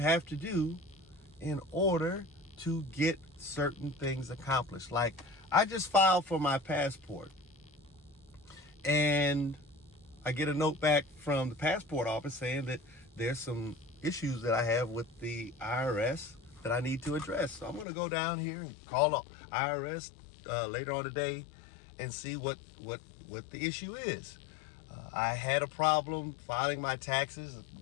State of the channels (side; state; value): right; drops out; at 17.9 s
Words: to do in order to get certain things accomplished. Like, I just filed for my passport, and I get a note back from the passport office saying that there's some issues that I have with the IRS that I need to address. So I'm going to go down here and call the IRS later on today and see what the issue is. I had a problem filing my taxes,